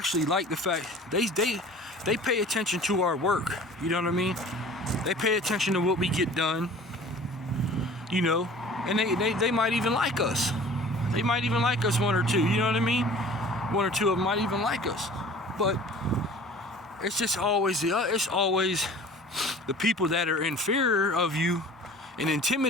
fact they pay attention to our work. You know what I mean? They pay attention to what we get done. And they might even like us. They might even like us, one or two. You know what I mean? One or two of them might even like us. But it's just always the people that are inferior of you and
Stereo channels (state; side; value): normal; both; correlation 0.46